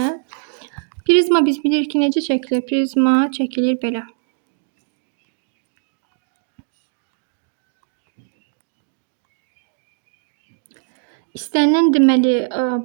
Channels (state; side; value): silent; left; 65 dB below the other